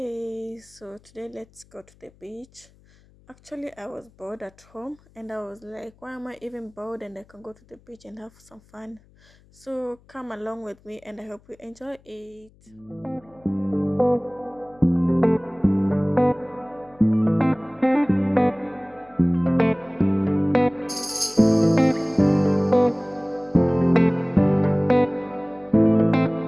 so today let's go to the beach. Actually, I was bored at home and I was like, why am I even bored? And I can go to the beach and have some fun. So come along with me and I hope you enjoy it.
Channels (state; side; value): noise; left; hum, 29 dB below the sound